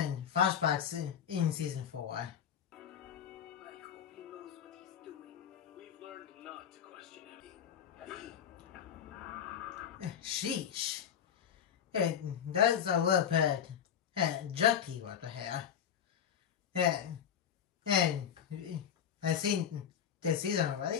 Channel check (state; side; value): quieter; right; 8.6 dB